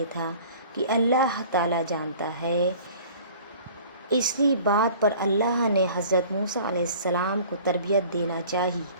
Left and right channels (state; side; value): inverted; both; correlation -0.47